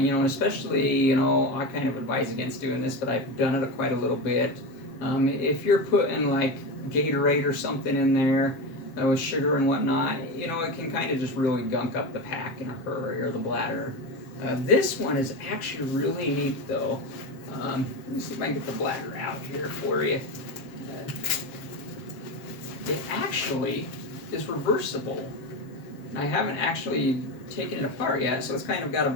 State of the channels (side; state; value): right; late; 7.3 ms